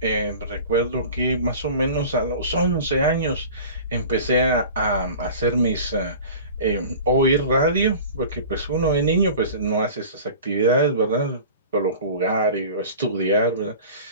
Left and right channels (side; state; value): both; inverted; correlation -0.40